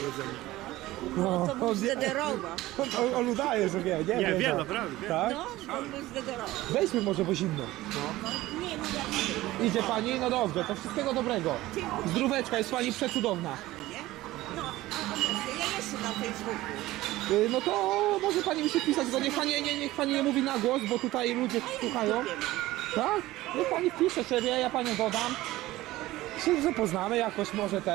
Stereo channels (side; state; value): left; quieter; 17.2 dB